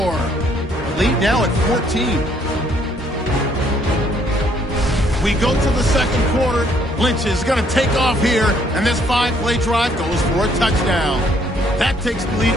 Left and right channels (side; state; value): both; normal; correlation 0.66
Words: Lead now at 14. We go to the 2nd quarter. Lynch is going to take off here, and this 5-play drive goes for a touchdown. That takes the lead